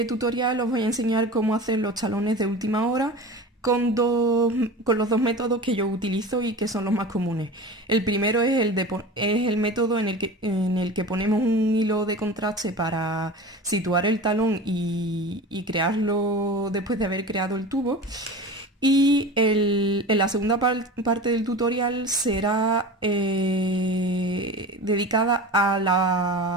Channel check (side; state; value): both; normal; correlation 0.33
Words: tutorial os voy a enseñar cómo hacer los talones de última hora con los dos métodos que yo utilizo y que son los más comunes. El primero es el método en el que ponemos un hilo de contraste para situar el talón y crearlo después de haber creado el tubo. Y en la segunda parte del tutorial será dedicada